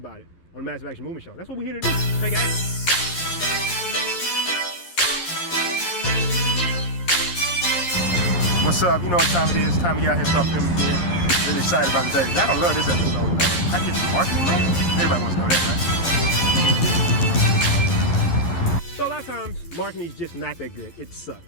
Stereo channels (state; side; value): late; right; 11 ms